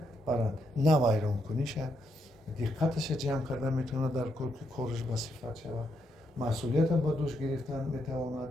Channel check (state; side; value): normal; both; correlation 0.78